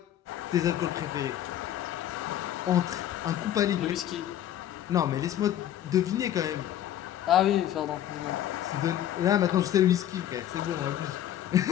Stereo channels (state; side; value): quieter; right; 11.5 dB